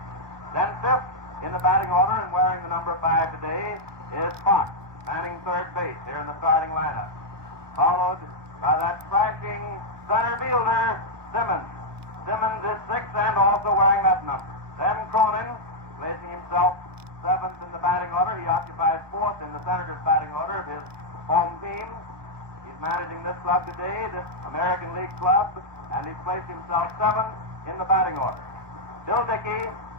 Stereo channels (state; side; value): late; left; 1.2 ms